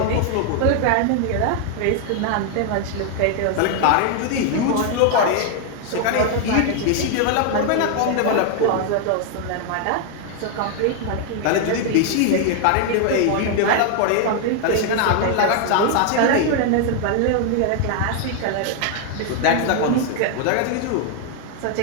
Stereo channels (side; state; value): both; different; correlation 0.00